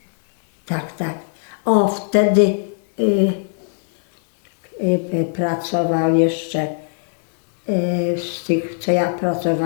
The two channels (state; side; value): silent; right; 66 dB below the other